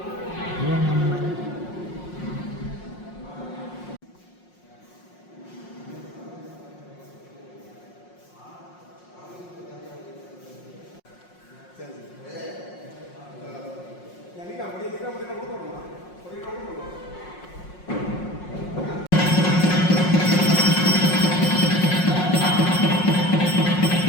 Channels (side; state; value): right; late; 5.5 ms